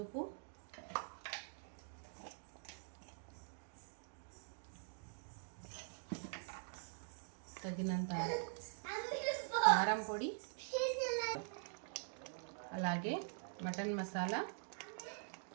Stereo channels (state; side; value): silent; left; digital silence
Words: తగినంత కారం పొడి, అలాగే మటన్ మసాలా,